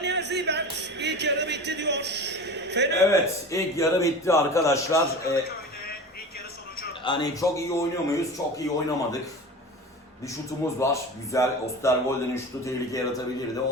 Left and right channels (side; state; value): both; normal; correlation 0.33